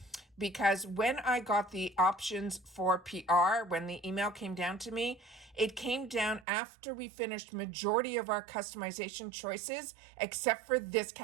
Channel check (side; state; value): left; drops out; at 6.5 s